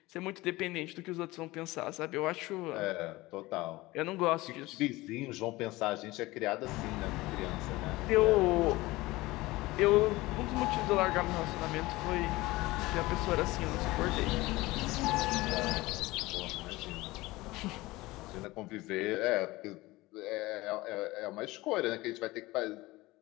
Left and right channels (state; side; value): quieter; right; 20.0 dB